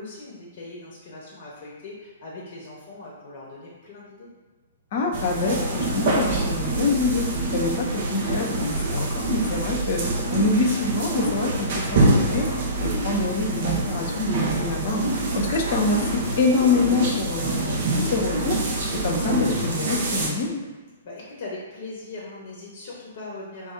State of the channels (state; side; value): inverted; both; correlation -0.32